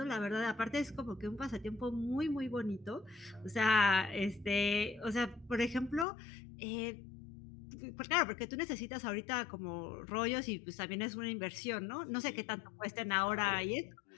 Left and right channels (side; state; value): right; drops out; at 6.1 s